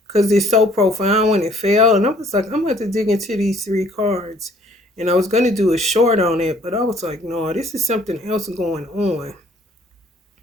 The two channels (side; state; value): both; normal; correlation 0.59